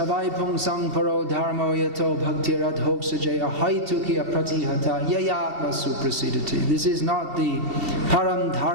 Pungsang Paro Dharma Yato Bhakti Radhok Sajaya Haituki Apratihata Yayatma Suprasidati. This is not the Param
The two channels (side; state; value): left; late; 2.6 ms